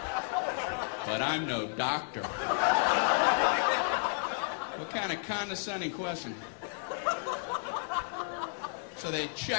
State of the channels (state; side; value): silent; right; 56 dB below the other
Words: But I'm no doctor. What kind of condescending question? So they